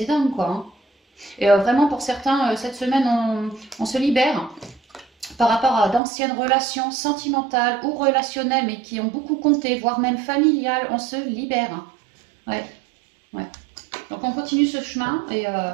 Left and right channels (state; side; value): drops out; left; at 6.0 s